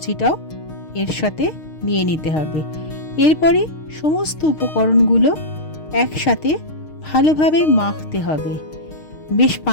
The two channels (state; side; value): late; right; 6.5 ms